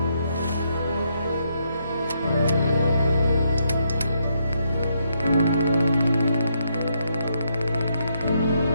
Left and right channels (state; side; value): inverted; both; correlation -0.76